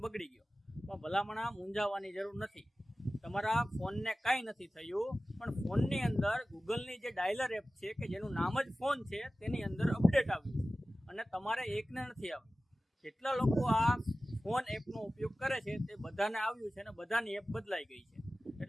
બગડી ગયો. પણ ભલામણ મૂંઝાવાની જરૂર નથી. તમારા ફોનને કાંઈ નથી થયું, પણ ફોનની અંદર ગૂગલની જે ડાયલર એપ છે કે જેનું નામ જ ફોન છે તેની અંદર અપડેટ આવ્યું છે અને તમારે એકને નથી આવ્યું. જેટલા લોકો આ ફોન એપનો ઉપયોગ કરે છે તે બધાને આવ્યું છે અને બધાની એપ બદલાઈ ગઈ છે.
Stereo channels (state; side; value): normal; both; correlation 0.96